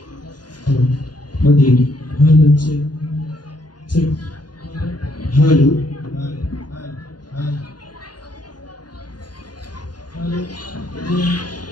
Madin. Hello. Check. Check. Hello.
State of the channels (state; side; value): late; right; 0.70 ms